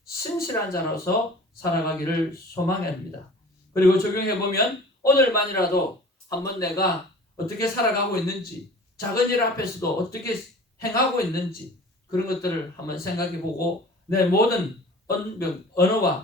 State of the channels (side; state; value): both; normal; correlation 0.44